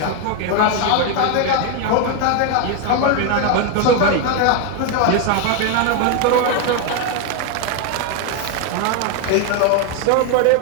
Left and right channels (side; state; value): both; different; correlation 0.01